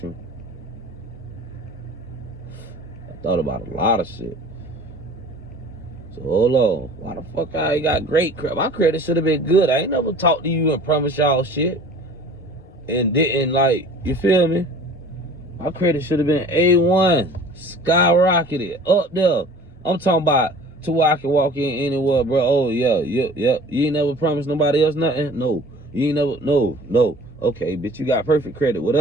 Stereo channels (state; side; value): normal; both; correlation 0.45